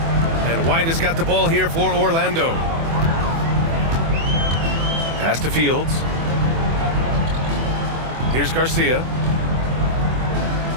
And White has got the ball here for Orlando. Pass to Fields. Here's Garcia.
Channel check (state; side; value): late; left; 24 ms